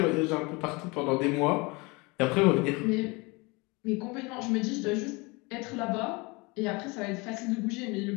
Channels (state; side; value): quieter; right; 26.5 dB